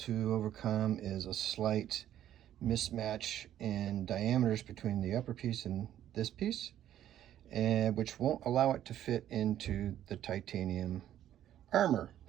overcome is a slight mismatch in diameters between the upper piece and this piece, and which won't allow it to fit into the titanium armor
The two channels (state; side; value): quieter; left; 11.6 dB